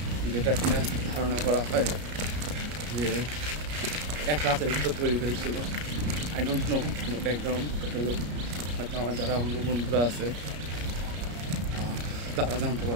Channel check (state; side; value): late; left; 33 ms